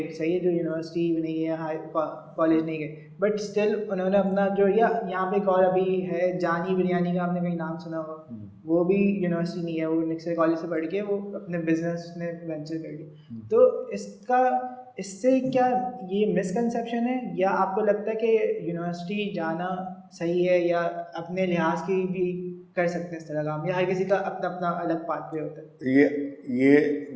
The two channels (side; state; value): both; identical; correlation 1.00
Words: सही है, जो यूनिवर्सिटी नहीं है, हाई कॉलेज नहीं गए, बट स्टिल उन्होंने अपना जो यहाँ पे एक और अभी है जानी बिरयानी का, आपने कहीं नाम सुना होगा, वो भी यूनिवर्सिटी नहीं है, वो निक्सर कॉलेज से पढ़ के वो अपने बिजनेस में वेंचर कर लिया। तो इससे क्या ये मिसकंसेप्शन है, या आपको लगता है कि यूनिवर्सिटी जाना सही है, या अपने लिहाज की भी कर सकते हैं इस तरह काम, या हर किसी का अपना अपना अलग पाथवे होता है? ये